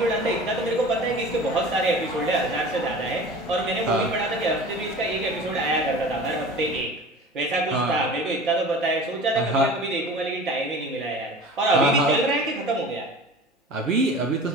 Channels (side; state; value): both; normal; correlation 0.38